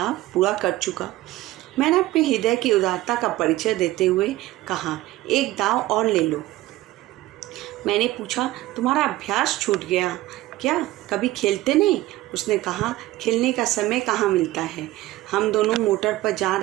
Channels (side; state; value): left; quieter; 16.9 dB